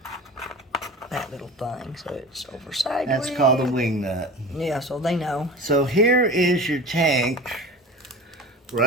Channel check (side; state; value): both; normal; correlation 0.35